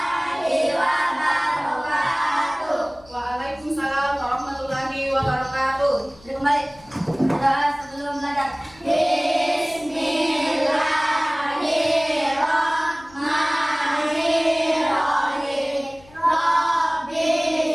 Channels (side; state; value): left; noise; hum, 25 dB below the sound